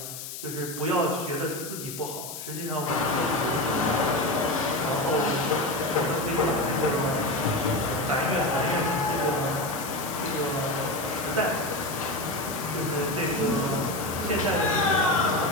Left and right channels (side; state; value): left; noise; hiss, 9 dB below the sound